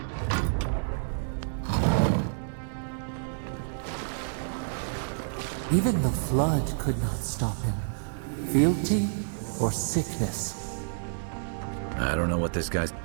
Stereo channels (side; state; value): left; silent; 59 dB below the other